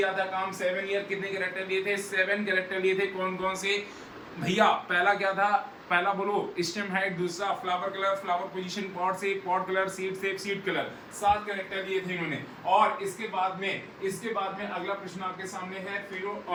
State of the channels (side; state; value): both; identical; correlation 1.00